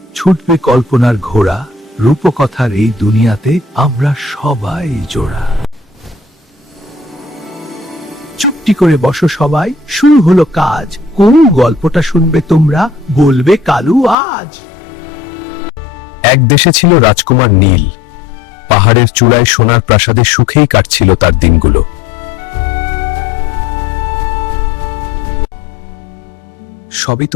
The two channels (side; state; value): right; drops out; at 14.2 s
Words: ছুটবে কল্পনার ঘোড়া, রূপকথার এই দুনিয়াতে আমরা সবাই জোড়া। চুপটি করে বসো সবাই, শুরু হলো কাজ। কোন গল্পটা শুনবে তোমরা, বলবে কালু আজ। এক দেশে ছিল রাজকুমার নীল। পাহাড়ের চূড়ায় সোনার প্রাসাদে সুখেই কাটছিল তার দিনগুলো। সবই